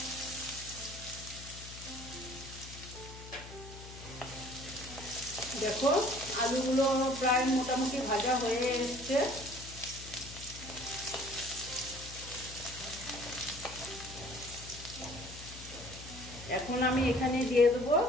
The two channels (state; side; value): noise; left; hum, 14 dB below the sound